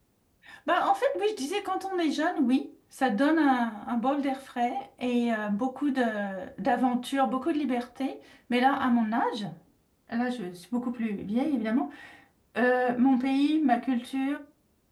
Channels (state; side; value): identical; both; correlation 1.00